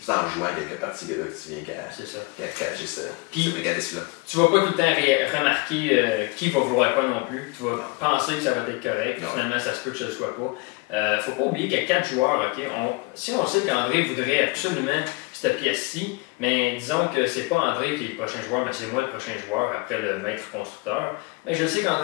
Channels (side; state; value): right; quieter; 25.7 dB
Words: en jouant quelques parties que tu viens qu'à cacher ce mécanisme-là. Tu vas pas tout le temps remarquer qui va vouloir quoi non plus. Tu vas penser que ça va être correct. Finalement, ça se peut que ce ne soit pas. Faut pas oublier qu'il y a 4 joueurs. Okay? Si on sait qu'André voudrait absolument cette pièce-ci, mais disons que c'est pas André qui est le prochain joueur, mais c'est moi le prochain joueur après le maître constructeur. Mais je sais